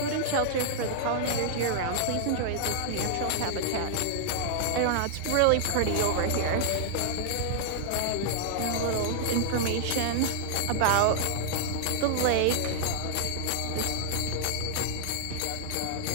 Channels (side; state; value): both; different; correlation -0.01